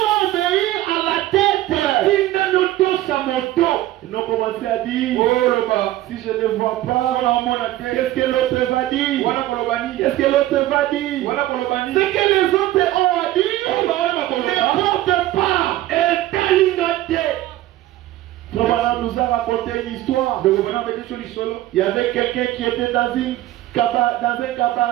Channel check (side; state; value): left; quieter; 15.1 dB